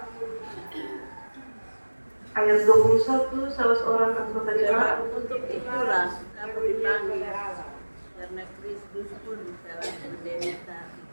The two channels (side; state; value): both; inverted; correlation -1.00